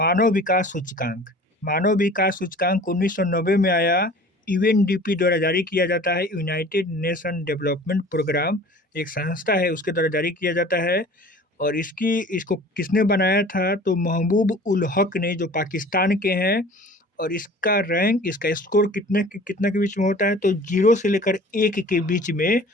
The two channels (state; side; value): normal; both; correlation 0.45